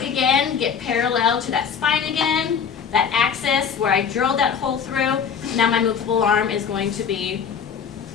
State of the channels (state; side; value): quieter; right; 6.9 dB